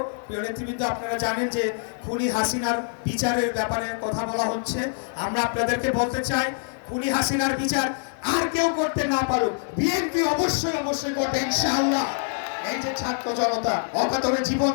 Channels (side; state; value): right; silent; digital silence